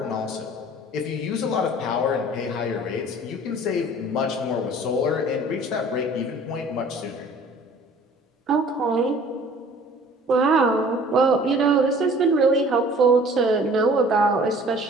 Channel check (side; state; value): both; normal; correlation 0.50